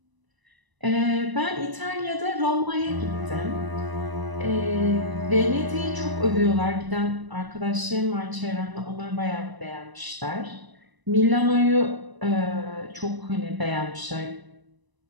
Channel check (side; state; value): left; late; 1.0 ms